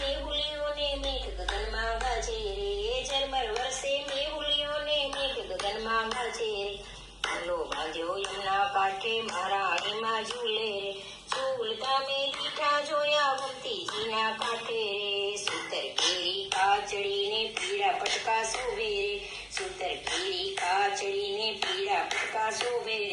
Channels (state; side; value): identical; both; correlation 1.00